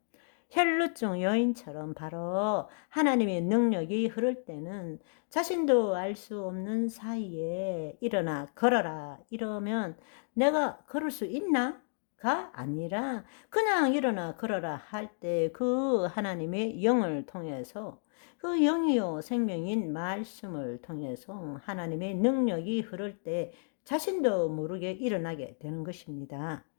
혈루증 여인처럼 바로 하나님의 능력이 흐를 때는 자신도 알 수 없는 사이에 일어나 걸어라 이러면 내가 걸을 수 있나? 가 아니라 그냥 일어나 걸어라 할 때 그 하나님의 영을 통해서 그 영이요 생명인 말씀을 통해서 하나님의 능력이 흐를 때 자신도 모르게 일어나게 되는 것입니다.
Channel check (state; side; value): silent; right; digital silence